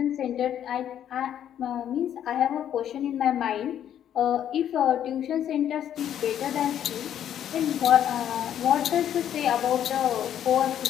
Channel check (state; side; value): quieter; right; 10.2 dB